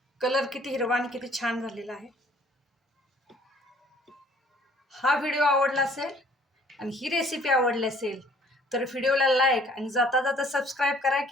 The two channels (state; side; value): normal; both; correlation 0.57